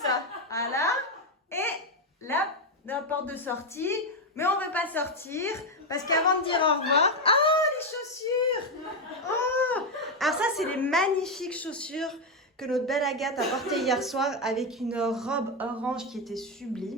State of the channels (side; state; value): both; normal; correlation 0.07